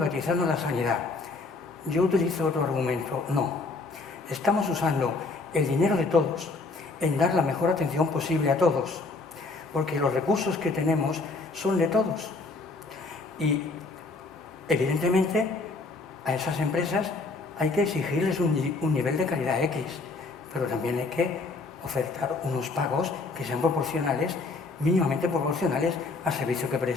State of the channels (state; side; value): quieter; right; 3.7 dB